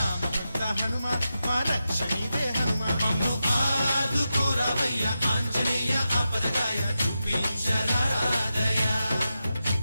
హనుమా మా రక్షణీవే హనుమా మమ్ము ఆదుకోరావయ్య ఆంజనేయ ఆపదగాయ చూపించరాదయ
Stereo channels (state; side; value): inverted; both; correlation -0.90